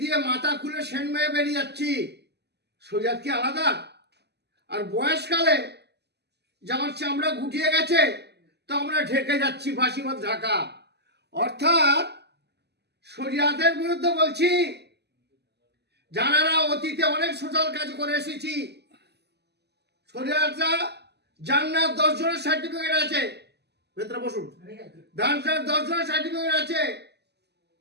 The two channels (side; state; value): left; late; 0.49 ms